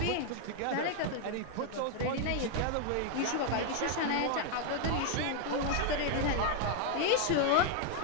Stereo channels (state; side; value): different; both; correlation 0.00